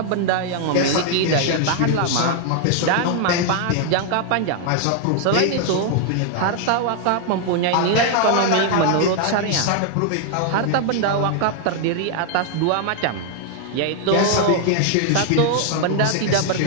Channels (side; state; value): both; different; correlation 0.00